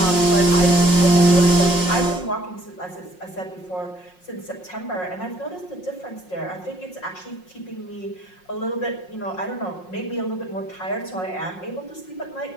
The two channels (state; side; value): late; right; 5.5 ms